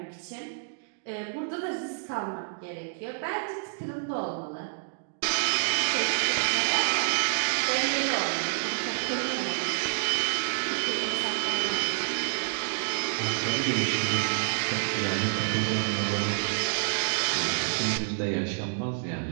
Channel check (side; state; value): left; silent; digital silence